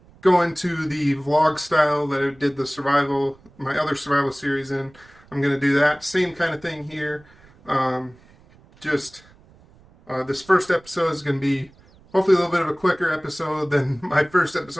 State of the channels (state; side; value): noise; right; rumble, 27 dB below the sound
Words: go into the vlog style that I did my other survival series in. I'm going to do that same kind of thing here. This first episode is going to be hopefully a little bit of a quicker episode than my first